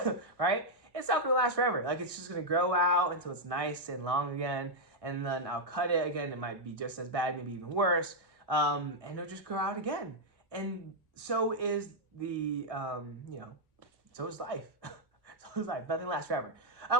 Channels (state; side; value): late; left; 1.6 ms